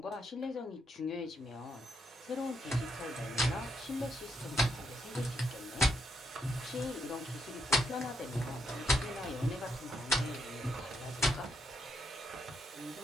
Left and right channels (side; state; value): both; normal; correlation 0.77